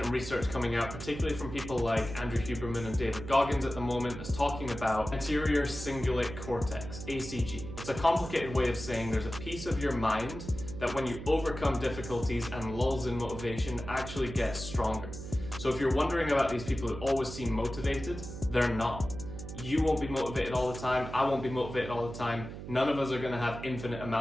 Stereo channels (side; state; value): right; noise; hum, 10 dB below the sound